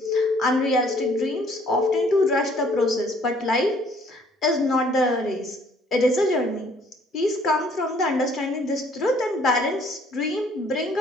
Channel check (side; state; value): both; normal; correlation 0.60